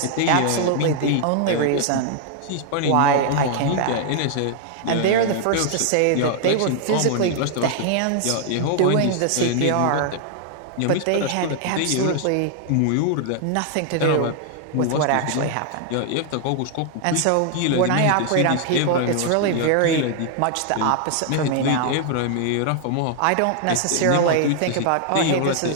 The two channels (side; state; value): both; different; correlation 0.00